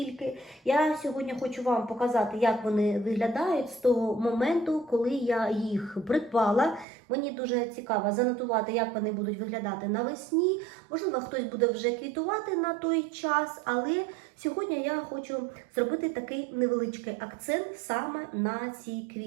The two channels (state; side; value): drops out; left; at 6.9 s